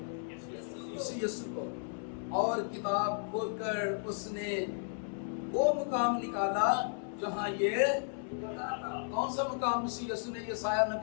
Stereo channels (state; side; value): silent; right; digital silence